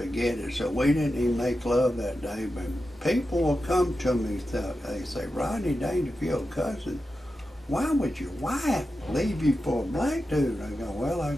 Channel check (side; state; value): both; normal; correlation 0.91